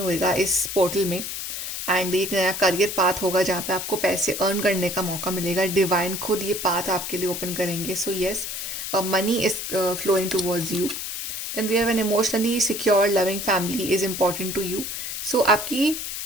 इस पोर्टल में, एंड एक नया करियर पाथ होगा जहाँ पे आपको पैसे अर्न करने का मौका मिलेगा। डिवाइन खुद ये पाथ आपके लिए ओपन करेंगे। So yes, money is flowing towards you. Then we have an emotionally secure loving family is important to you. So आपकी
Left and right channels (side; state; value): left; noise; hiss, 5 dB below the sound